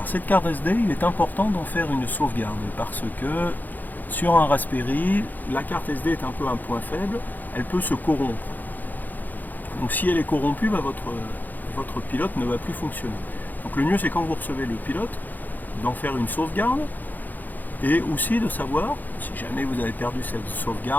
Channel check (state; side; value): late; right; 0.085 ms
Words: cette carte SD, il est important d'en faire une sauvegarde parce que sur un Raspberry, la carte SD est un peu un point faible, elle peut se corrompre. Donc si elle est corrompue, votre pilote ne va plus fonctionner. Donc le mieux c'est quand vous recevez le pilote, d'en faire une sauvegarde et aussi de savoir, si jamais vous avez perdu cette